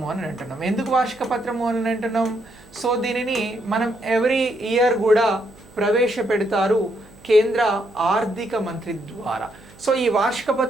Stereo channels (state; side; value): noise; right; hum, 25 dB below the sound